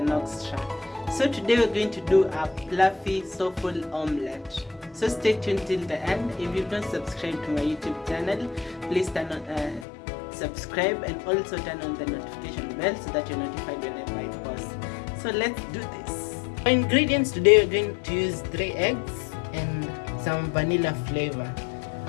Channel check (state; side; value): drops out; right; at 9.9 s